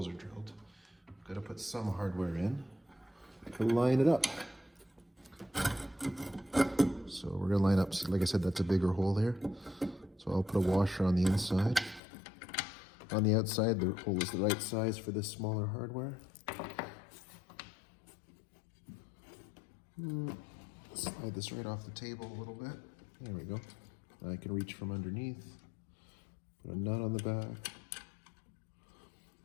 are drilled, I've got to put some hardware in to line it up. So we're gonna line up, like I said, that's a bigger hole there. So I'll put a washer on the inside. On the outside, the hole is the right size for this smaller hardware. Slide this right off the table a little bit. There we go. I can reach from underneath. Put a nut on the back.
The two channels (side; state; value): right; drops out; at 12.0 s